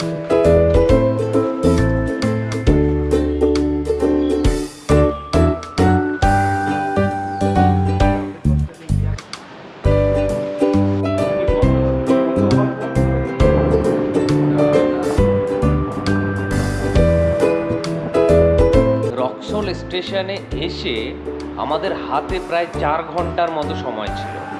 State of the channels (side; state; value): both; identical; correlation 1.00